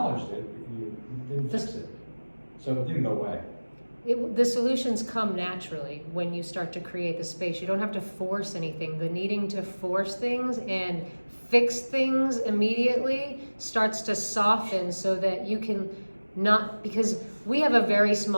it, you didn't fix it, so it didn't go away. The solutions come naturally when you start to create the space. You don't have to force anything. The needing to force things and fix things immediately starts to soften so that you can not, because we have a very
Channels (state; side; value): inverted; both; correlation -1.00